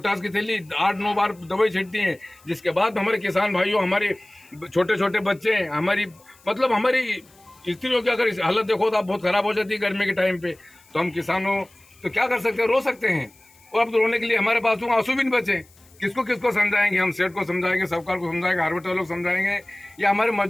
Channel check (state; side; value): noise; left; hiss, 28 dB below the sound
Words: की थैली 8-9 बार दवाई छिड़ती हैं। जिसके बाद हमारे किसान भाइयों, हमारे छोटे छोटे बच्चे, हमारी स्त्रियों की अगर हालत देखो तो आप बहुत खराब हो जाती है गर्मी के टाइम पे। तो हम किसानों तो क्या कर सकते हैं, रो सकते हैं। और अब तो रोने के लिए हमारे पास तो आंसू भी नहीं बचे। किसको समझाएंगे हम? सेठ को समझाएंगे, सरकार को समझाएंगे, हार्वेस्टर लोग समझाएंगे, या हमारे